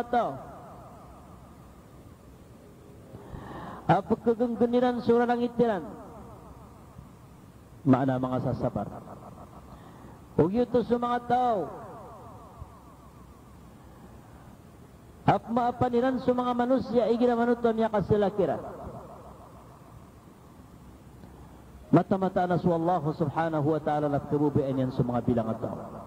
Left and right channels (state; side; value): identical; both; correlation 1.00